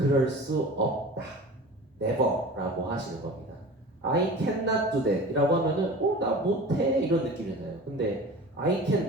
수 없다. never 라고 하시는 겁니다. I cannot do that 이라고 하면은 나 못해 이런 느낌이잖아요. 근데 I can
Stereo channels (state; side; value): normal; both; correlation 0.37